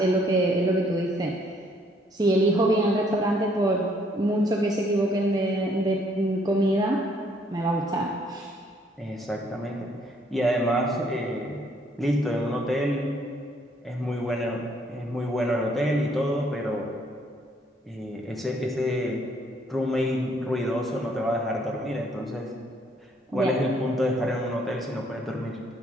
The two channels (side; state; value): both; normal; correlation 0.66